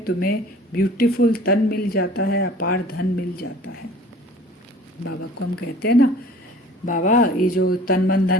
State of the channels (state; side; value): normal; both; correlation 0.48